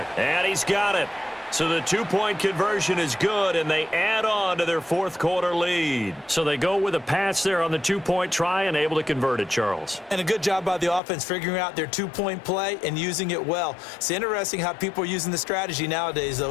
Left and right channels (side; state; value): right; drops out; at 11.0 s